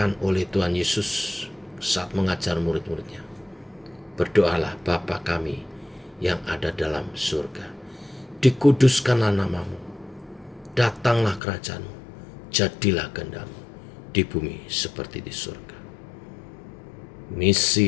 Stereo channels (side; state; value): right; drops out; at 11.4 s